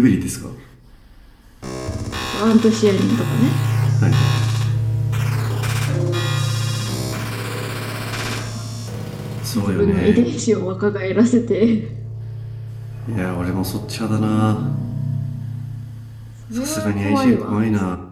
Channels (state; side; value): identical; both; correlation 1.00